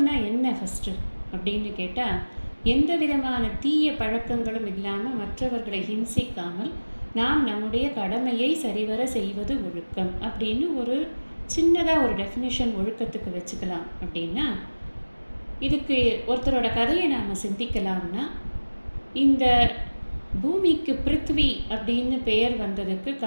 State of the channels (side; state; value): both; inverted; correlation -1.00